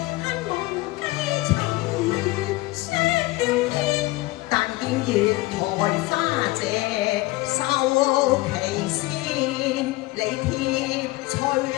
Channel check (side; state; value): right; quieter; 20.4 dB